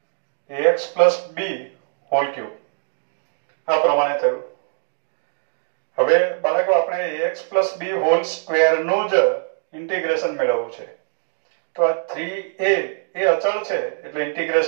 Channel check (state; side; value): silent; left; digital silence